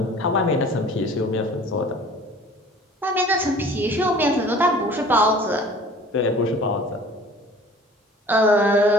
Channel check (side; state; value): both; normal; correlation 0.47